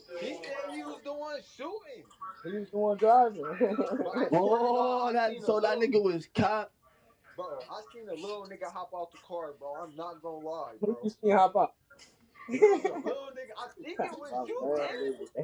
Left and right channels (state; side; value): identical; both; correlation 1.00